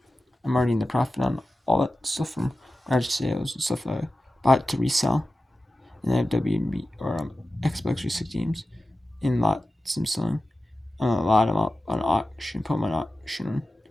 I'm already in the profit on all that stuff from garage sales and stuff I bought to resell. And I have WB or Xbox 360 games in lots I'm selling. A lot of them up on auction, put them on auction.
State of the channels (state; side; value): normal; both; correlation 0.94